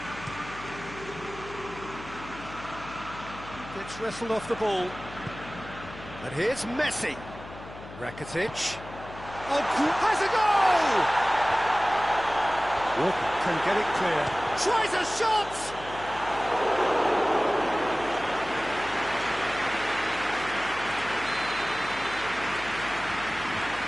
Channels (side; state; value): left; noise; hum, 15 dB below the sound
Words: Gets wrestled off the ball. And here's Messi. Rakitic. Oh, has a goal! Walker can get it clear. Tries a shot!